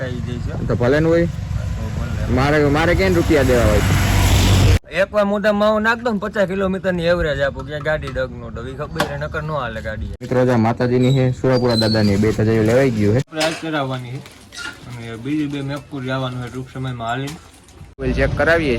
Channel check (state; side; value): identical; both; correlation 1.00